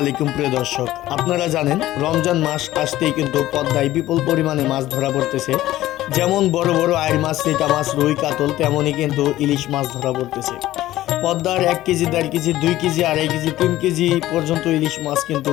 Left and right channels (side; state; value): right; quieter; 15.2 dB